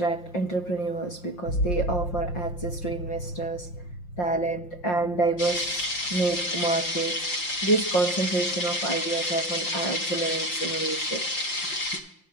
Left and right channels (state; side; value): late; right; 5.7 ms